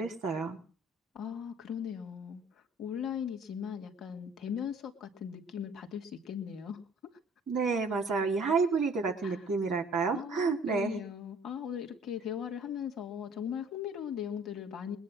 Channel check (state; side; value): normal; both; correlation 0.53